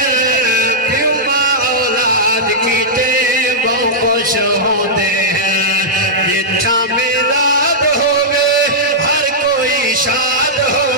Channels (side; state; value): both; normal; correlation -0.10